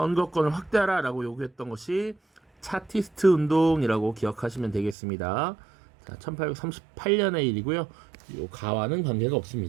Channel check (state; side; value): drops out; left; at 5.0 s